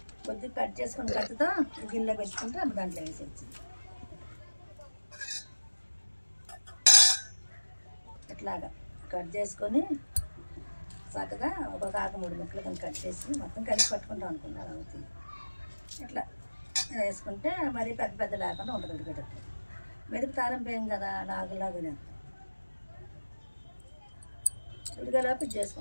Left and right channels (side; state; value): both; inverted; correlation -1.00